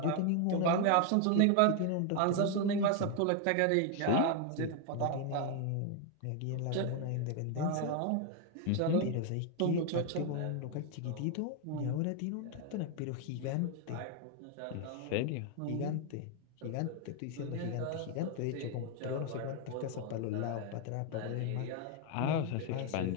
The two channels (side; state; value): both; different; correlation 0.01